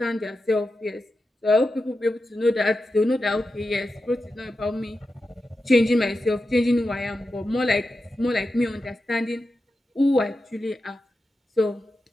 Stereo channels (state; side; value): normal; both; correlation 0.91